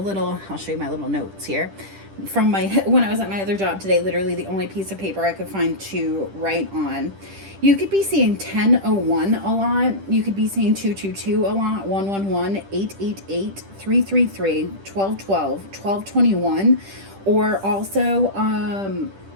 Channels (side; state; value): left; late; 10 ms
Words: I'll show you my little notes here. From when I was at my other job today, literally the only piece of paper I could find to write on. You could be seeing 1001 a lot. You could be seeing 222 a lot, 111, 888, 333, 1212, 1221, or also